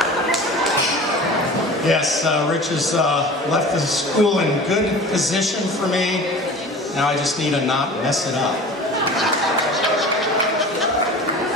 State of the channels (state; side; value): normal; both; correlation 0.39